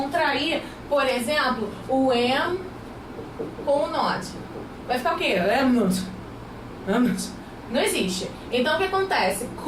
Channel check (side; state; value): both; identical; correlation 1.00